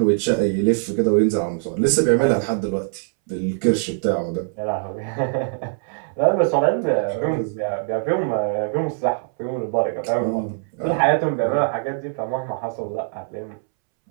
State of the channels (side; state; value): left; silent; 64 dB below the other